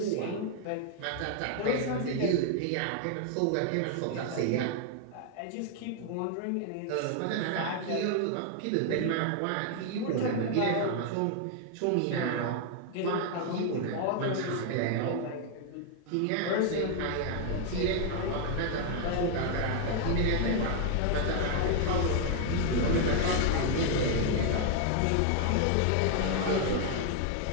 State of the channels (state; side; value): different; both; correlation 0.00